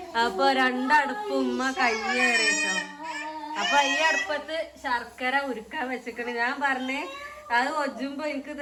അപ്പോൾ 2 അടുപ്പ് ഉമ്മ കയ്യേറി കേട്ടോ. അപ്പൊ ഈ അടുപ്പത്ത് ശർക്കര ഉരുക്കാൻ വെച്ചിക്കണ്. ഞാൻ പറഞ്ഞേ അത് ഒജുമ്പോ എനിക്ക്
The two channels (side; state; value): both; identical; correlation 1.00